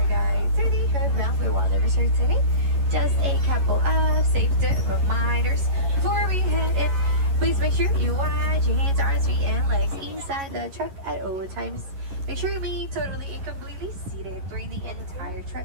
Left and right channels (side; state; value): left; late; 11 ms